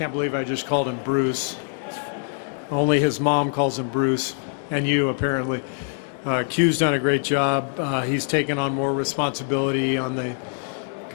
believe I just called him Bruce. Only his mom calls him Bruce, and you apparently. Q's done a great job. He's taken on more responsibility on the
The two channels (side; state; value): right; silent; 63 dB below the other